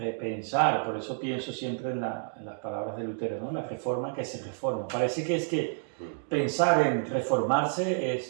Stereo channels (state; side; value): silent; left; digital silence